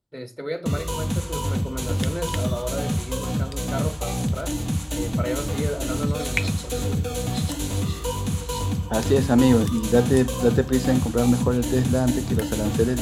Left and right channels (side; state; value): both; identical; correlation 1.00